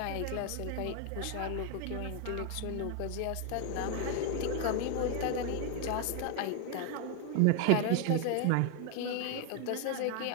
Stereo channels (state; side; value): different; both; correlation 0.01